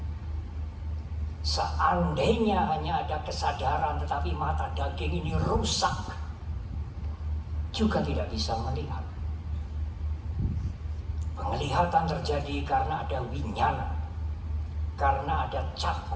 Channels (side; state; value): both; identical; correlation 1.00